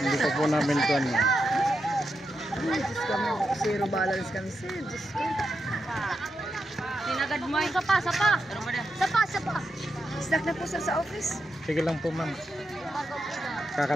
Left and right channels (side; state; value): both; normal; correlation 0.86